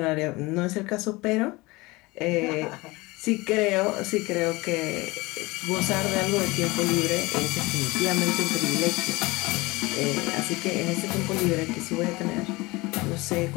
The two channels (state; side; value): quieter; right; 22.5 dB